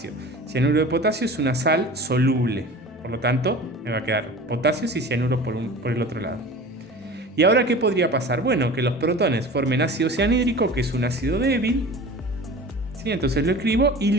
Cianuro de potasio es una sal soluble. Por lo tanto, me va a quedar potasios y cianuro por el otro lado. ¿Y ahora qué podría pasar? Bueno, que los protones formen ácido cianhídrico, que es un ácido débil. ¿Sí? Entonces lo escribo y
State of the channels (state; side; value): normal; both; correlation 0.38